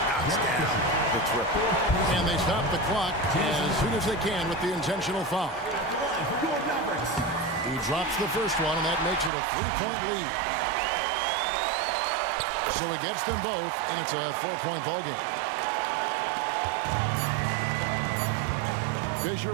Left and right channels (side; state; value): left; drops out; at 9.3 s